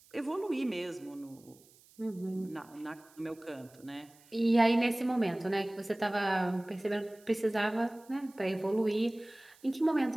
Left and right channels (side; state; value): right; noise; hiss, 27 dB below the sound